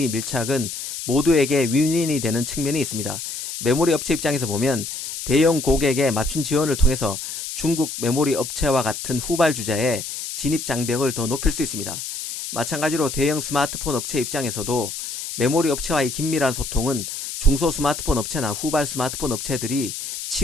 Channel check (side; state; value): left; noise; hiss, 7 dB below the sound